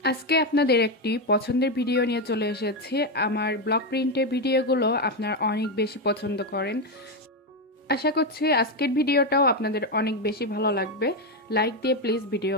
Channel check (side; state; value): both; normal; correlation 0.08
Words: আজকে আপনাদের একটি পছন্দের ভিডিও নিয়ে চলে এসেছি। আমার ব্লক প্রিন্টের ভিডিওগুলো আপনারা অনেক বেশি পছন্দ করেন। আশা করছি আজকের ভিডিওটাও আপনাদের অনেক বেশি ভালো লাগবে। লাইক দিয়ে প্লিজ